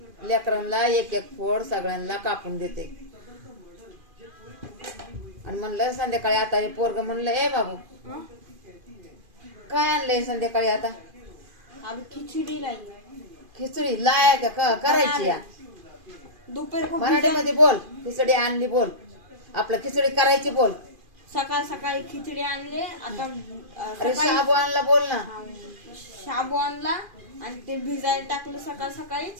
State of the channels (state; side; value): late; left; 2.5 ms